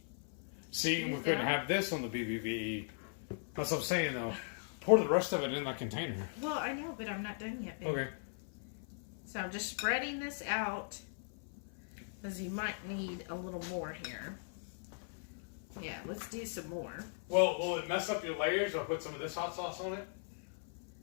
See, we couldn't have this on the BBVE. That's what I'm saying, though. Pour the rest of it in that container. Well, I know, but I'm not done yet, baby. Okay. So I'm just spreading this out. Because you might need a little more here. Yeah, let's do some more. Well, will it mess up your layers? I'll put some of this hot sauce on it.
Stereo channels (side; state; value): right; silent; 52 dB below the other